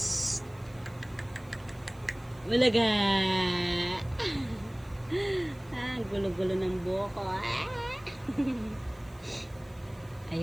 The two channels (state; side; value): noise; right; hiss, 28 dB below the sound